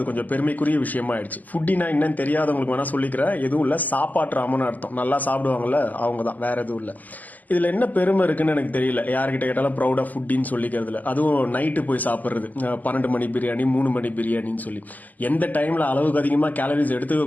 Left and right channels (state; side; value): late; right; 0.081 ms